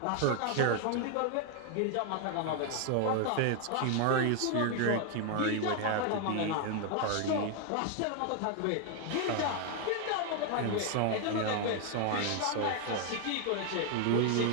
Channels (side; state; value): both; different; correlation 0.00